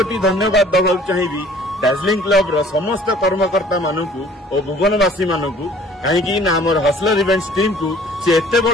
धन्यवाद दबाक चाहिए दार्जिलिंग क्लब रो समस्त कर्मकर्ता मानकू और भुवनवासी मानकू कहीं आमर हसलर इवेंट्स टीम को से एते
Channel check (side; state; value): both; normal; correlation 0.53